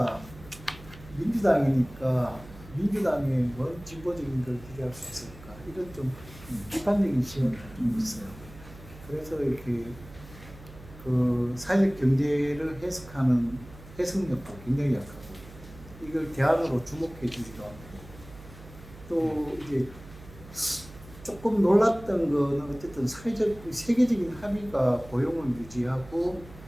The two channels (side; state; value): right; noise; hum, 18 dB below the sound